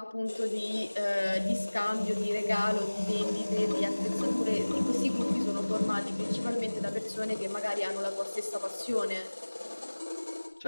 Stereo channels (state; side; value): inverted; both; correlation -1.00